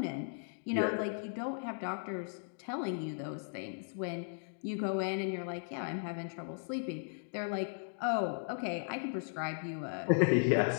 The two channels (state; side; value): silent; right; digital silence